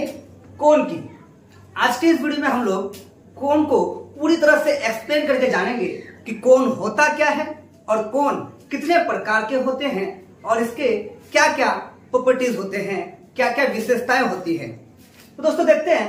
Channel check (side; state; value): both; identical; correlation 1.00